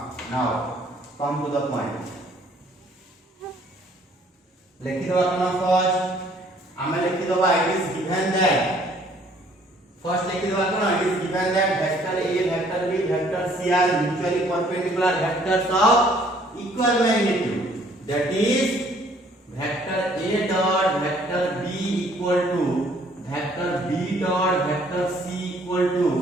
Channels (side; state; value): both; normal; correlation 0.60